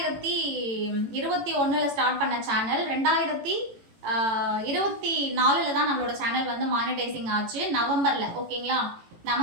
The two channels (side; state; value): left; late; 18 ms